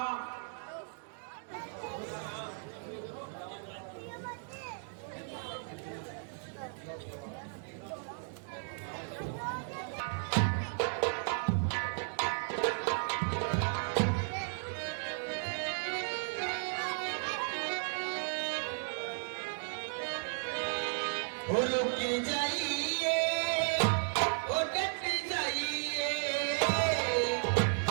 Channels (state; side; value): silent; left; 54 dB below the other